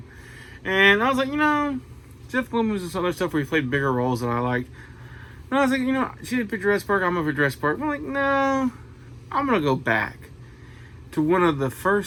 And I was like, Jeff Goldblum was some other stuff where he played bigger roles than I liked. And I was like, she did pick Jurassic Park, I'm going to pick Jurassic Park. I'm like, no, I'm going to go back to one of the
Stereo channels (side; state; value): both; identical; correlation 1.00